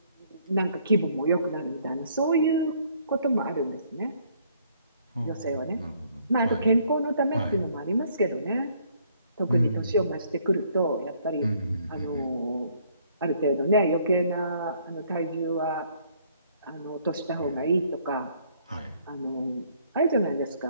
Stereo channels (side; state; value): both; inverted; correlation -0.65